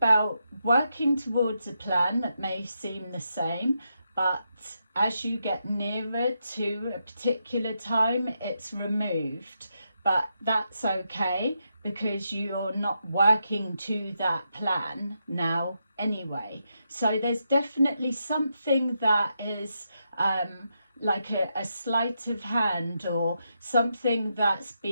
working towards a plan that may seem the same, but as you get nearer to a particular time, it's removed. But that's okay, because you're not working to that plan now anyway. So there's definitely something that is like a sleight of hand, or something that's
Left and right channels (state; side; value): inverted; both; correlation -0.83